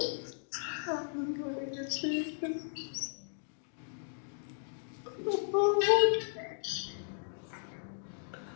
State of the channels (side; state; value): right; silent; digital silence